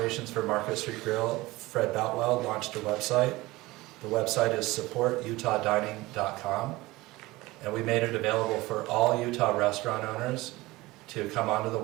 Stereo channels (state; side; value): quieter; left; 20.1 dB